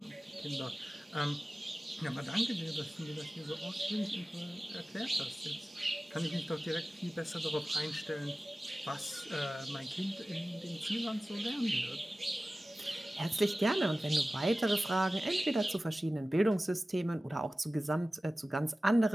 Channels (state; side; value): normal; both; correlation 0.96